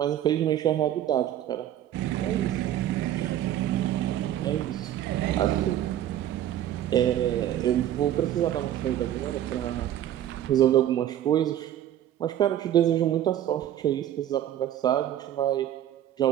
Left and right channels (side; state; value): left; quieter; 11.7 dB